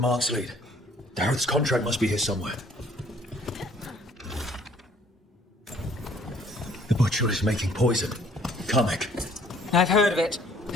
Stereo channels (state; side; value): normal; both; correlation 0.59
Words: lead. Dareth's contract must be here somewhere. The butcher is making poison. Comic. I've heard of it.